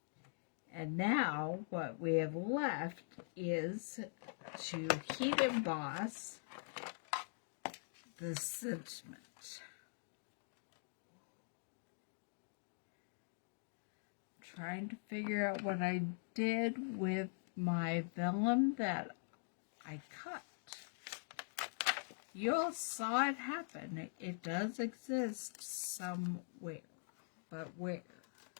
And now what we have left is to heat emboss the sentiment. Trying to figure out what I did with my vellum that I cut. you all saw it happen. It does exist somewhere. But where?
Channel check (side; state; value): right; silent; digital silence